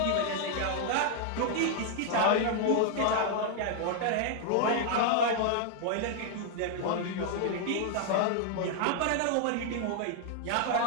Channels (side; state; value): both; different; correlation 0.00